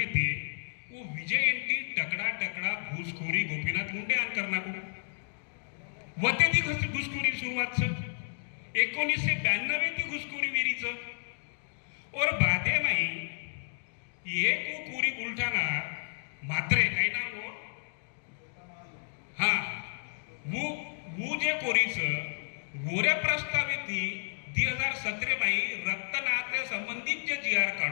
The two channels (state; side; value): silent; right; digital silence